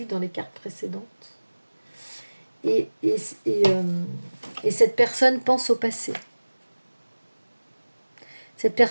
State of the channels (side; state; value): both; inverted; correlation -1.00